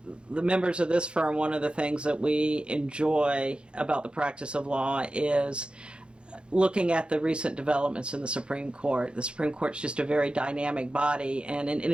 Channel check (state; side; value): late; left; 0.055 ms